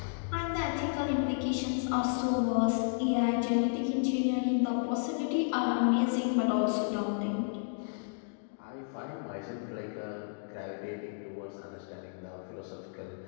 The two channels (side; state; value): right; silent; digital silence